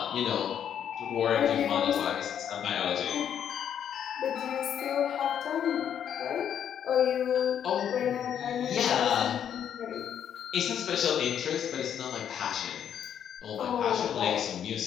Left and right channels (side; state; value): right; quieter; 9.0 dB